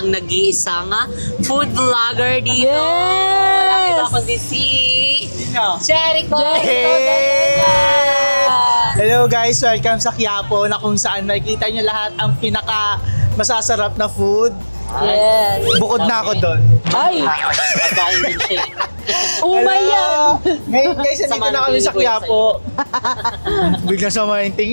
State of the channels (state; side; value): inverted; both; correlation -1.00